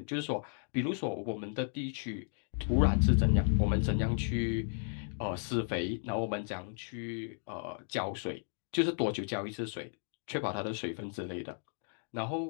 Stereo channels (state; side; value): silent; right; digital silence